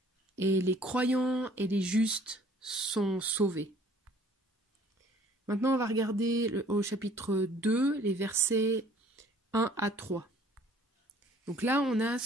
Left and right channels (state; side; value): normal; both; correlation 0.55